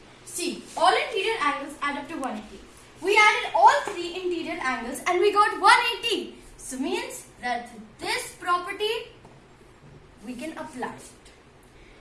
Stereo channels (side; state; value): both; identical; correlation 1.00